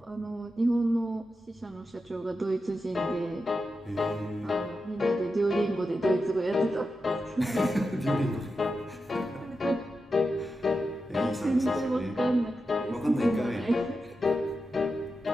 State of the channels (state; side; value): normal; both; correlation 0.89